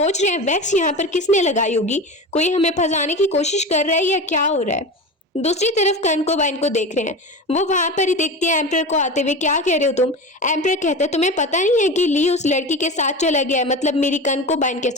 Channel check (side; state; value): both; normal; correlation 0.28